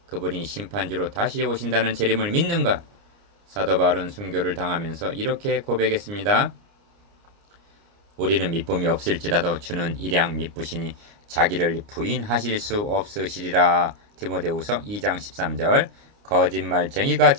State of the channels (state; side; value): late; left; 29 ms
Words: 그분이 심판주로 다시 오신다는 재림을 믿는가? 사도 바울은 순교를 당하면서 이렇게 고백했습니다. 우리는 미쁨이 없을지라도 주는 일양 미쁘시니 자기를 부인하실 수 없으시리라. 디모데후서 2장 13절. 거짓말쟁이가